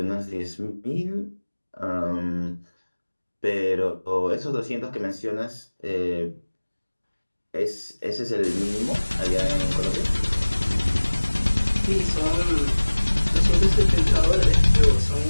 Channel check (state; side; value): inverted; both; correlation -1.00